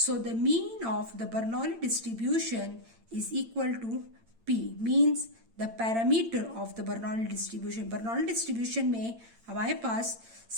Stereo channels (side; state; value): left; late; 8.8 ms